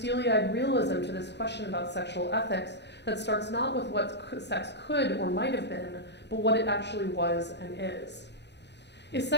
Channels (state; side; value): late; right; 0.50 ms